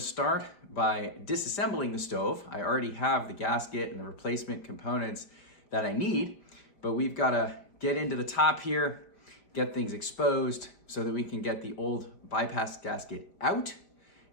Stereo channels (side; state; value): right; late; 5.1 ms